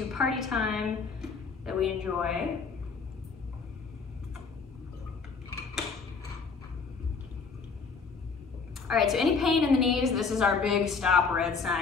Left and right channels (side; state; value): right; quieter; 5.1 dB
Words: party time that we enjoy. All right, so any pain in the knees, this is our big stop red